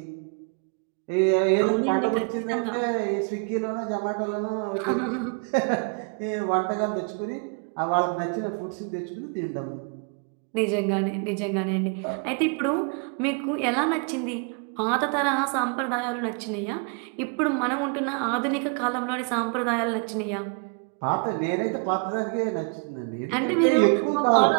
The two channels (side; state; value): left; quieter; 38.3 dB